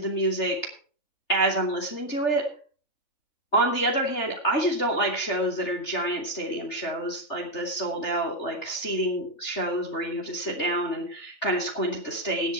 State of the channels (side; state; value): right; late; 3.3 ms